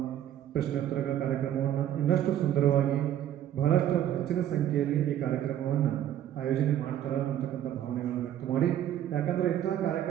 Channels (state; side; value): quieter; left; 11.1 dB